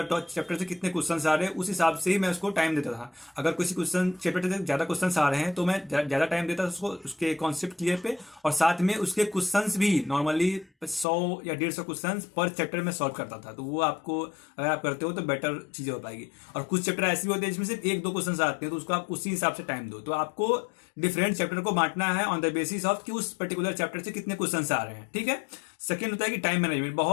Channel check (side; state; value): right; drops out; at 11.1 s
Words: चैप्टर से कितने क्वेश्चंस आ रहे हैं, उस हिसाब से ही मैं उसको टाइम देता था। अगर किसी क्वेश्चन चैप्टर से ज्यादा क्वेश्चंस आ रहे हैं तो मैं ज्यादा टाइम देता था उसको, उसके कॉन्सेप्ट क्लियर पे, और साथ में उसके क्वेश्चंस भी नॉर्मली 100 या 150 क्वेश्चन पर चैप्टर में सॉल्व करता था। तो वो आपको अगर आप करते हो तो बेटर चीजें हो पाएगी। और कुछ चैप्टर ऐसे भी होते हैं जिसमें सिर्फ 1-2 क्वेश्चन आते हैं, तो उसको आप उसी हिसाब से टाइम दो। तो आपको डिफरेंट चैप्टर को बांटना है ऑन द बेसिस ऑफ कि उस पर्टिकुलर चैप्टर से कितने क्वेश्चंस आ रहे हैं। ठीक है। सेकंड होता है कि टाइम मैनेजमेंट।